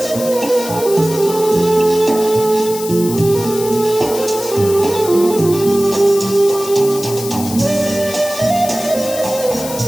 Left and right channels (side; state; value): left; noise; hiss, 10 dB below the sound